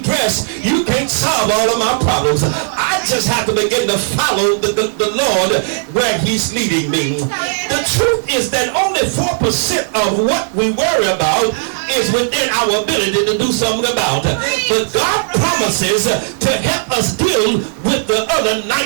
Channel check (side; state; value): left; silent; digital silence